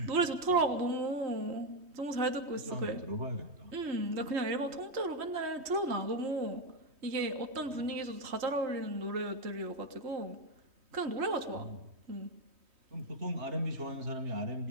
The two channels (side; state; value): left; late; 3.1 ms